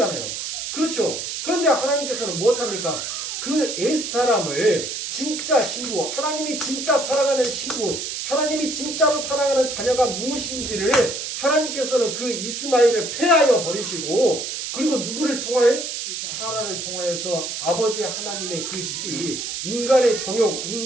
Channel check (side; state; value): right; noise; hiss, 5 dB below the sound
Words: 그렇죠. 그런데 하나님께서는 무엇합니까? 그 옛사람을 진짜 신부, 하나님이 진짜 사랑하는 신부, 하나님이 진짜로 사랑하는 자녀가 무엇인지를 하나님께서는 그 이스마엘을 폐하여 버리시고 그리고 누구를 통하여? 사라를 통하여서 아버지 하나님의 그 씨, 인간의 정욕,